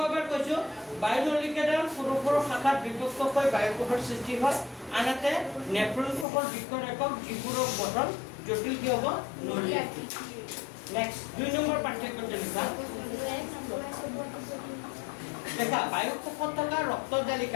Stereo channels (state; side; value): drops out; right; at 6.2 s